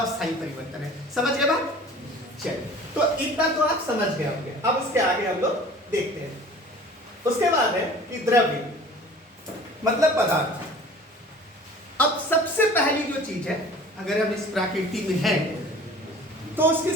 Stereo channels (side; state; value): both; normal; correlation 0.45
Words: स्थायी परिवर्तन है। समझ गए बात? चलिए, तो इतना तो आप समझ गए होंगे। अब इसके आगे हम लोग देखते हैं। उसके बाद है कि द्रव्य मतलब पदार्थ। अब सबसे पहली जो चीज है, अगर हम इस प्रकृति में हैं, तो उसकी